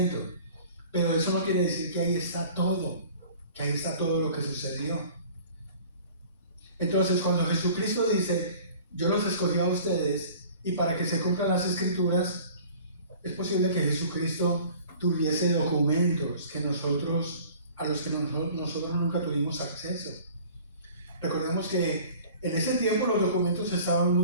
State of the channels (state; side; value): inverted; both; correlation -0.47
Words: Pero eso no quiere decir que ahí está todo lo que sucedió. Entonces, cuando Jesucristo dice, yo los escogí a ustedes, y para que se cumplan las escrituras, es posible que Jesucristo tuviese documentos a los que nosotros nunca tuvimos acceso. Recordemos que en ese tiempo los documentos estaban